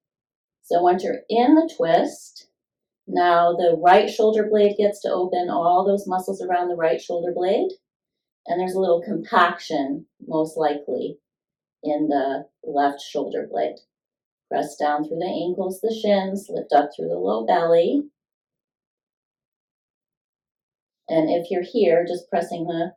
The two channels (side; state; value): both; identical; correlation 1.00